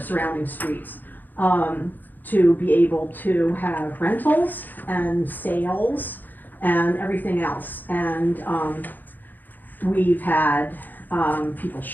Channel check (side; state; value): right; late; 0.087 ms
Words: surrounding streets, to be able to have rentals and sales and everything else. And we've had people